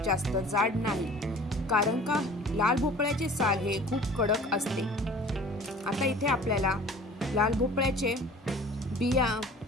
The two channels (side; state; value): both; normal; correlation 0.46